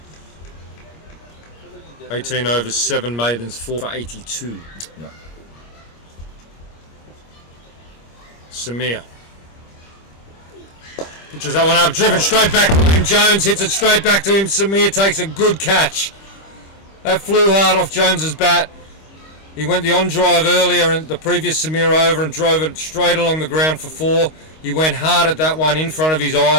18 overs, 7 maidens, 4 for 82. Yeah. Samir. Pitches that one up, driven straight back to him. Jones hits it straight back to him. Samir takes a good catch. That flew hard off Jones's bat. He went the on drive earlier in the previous Samir over and drove it straight along the ground for 4. He went hard at that one in front of his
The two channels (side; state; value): right; late; 25 ms